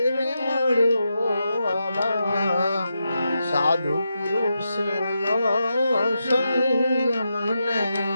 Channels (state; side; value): inverted; both; correlation -0.86